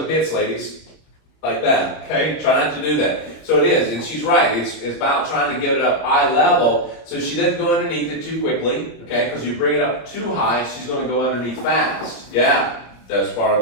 pits, ladies, like that, okay? Try not to do that. So it is, and she's right. It's about trying to get it up eye level so she doesn't go underneath it too quickly, okay? Because you bring it up too high, she's going to go underneath fast. Yeah, that's part of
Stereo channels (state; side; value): late; right; 26 ms